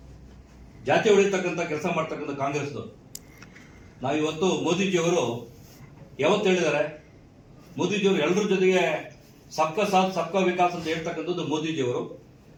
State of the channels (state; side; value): identical; both; correlation 1.00